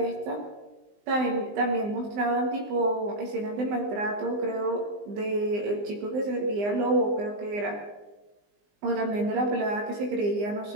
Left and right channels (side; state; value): left; late; 20 ms